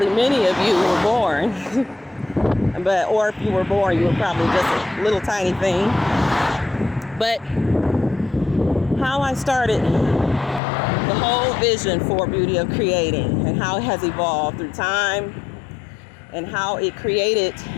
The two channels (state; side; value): drops out; right; at 10.6 s